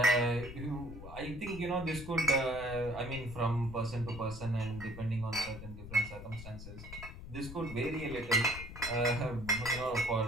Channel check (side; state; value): left; noise; rumble, 12 dB below the sound